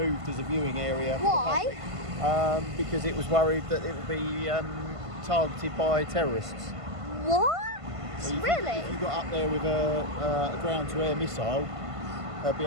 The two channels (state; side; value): late; left; 1.5 ms